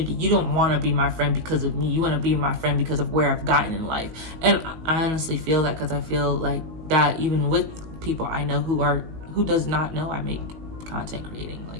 You don't want to be my friend because of me. You want to be my friend because of where I've gotten in life. And I honestly feel that because I feel like that even with people I know who does not know I make content creating.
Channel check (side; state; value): left; late; 19 ms